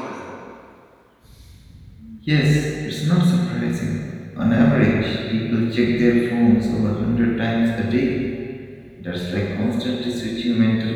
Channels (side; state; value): both; identical; correlation 1.00